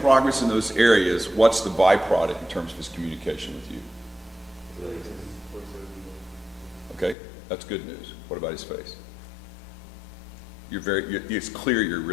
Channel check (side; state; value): right; drops out; at 7.2 s